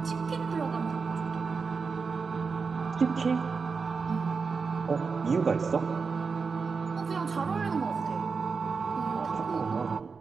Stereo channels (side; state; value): left; quieter; 5.0 dB